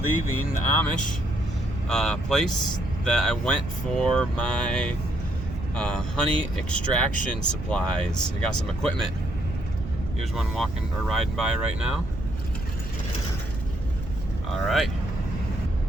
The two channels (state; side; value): noise; right; rumble, 8 dB below the sound